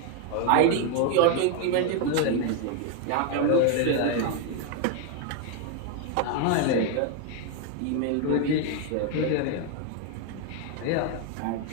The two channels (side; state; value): both; different; correlation 0.01